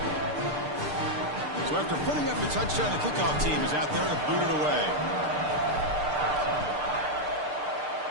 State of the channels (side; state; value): left; late; 6.7 ms